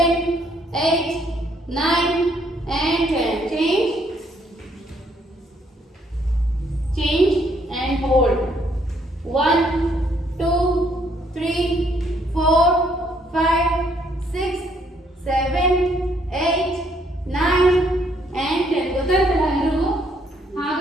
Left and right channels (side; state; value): both; normal; correlation 0.69